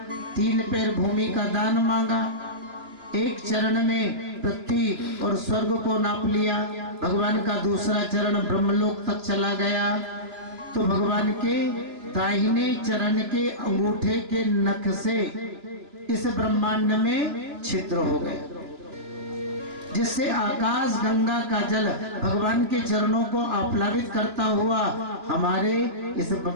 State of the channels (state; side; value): late; left; 2.9 ms